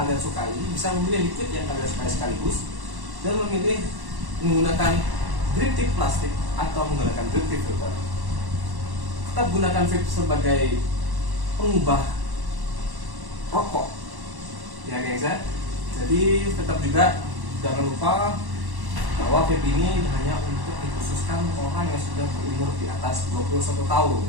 sukai, bisa memilih liquid yang kalian sukai sekaligus, dan memilih menggunakan drip tip plastik atau menggunakan drip tip filter. Tetap gunakan vape sebagai pengubah rokok, ya guys ya. Jadi tetap juga jangan lupa bahwa vape ini hanya untuk dikhususkan orang yang sudah berumur di atas 21 tahun,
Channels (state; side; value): late; left; 1.1 ms